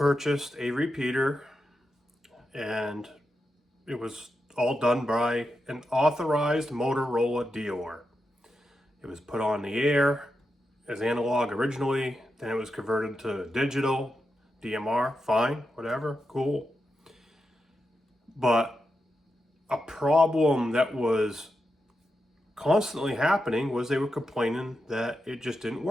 a repeater, and it was all done by an authorized Motorola dealer. It was put on the air. as analog originally, then it was converted to digital, DMR, fine, whatever, cool. But a problem that was constantly happening was they were complaining that it just didn't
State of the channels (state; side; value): normal; both; correlation 0.88